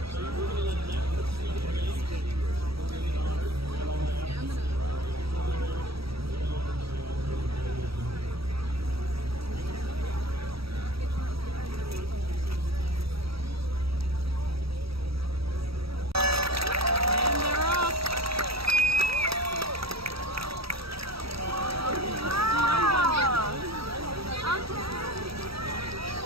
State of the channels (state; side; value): late; left; 0.76 ms